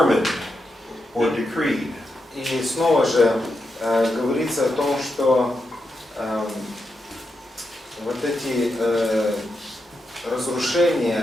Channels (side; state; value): both; normal; correlation 0.86